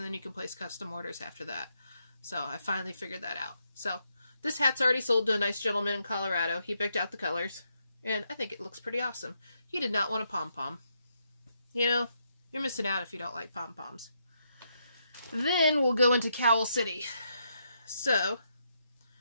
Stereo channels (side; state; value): both; inverted; correlation -0.79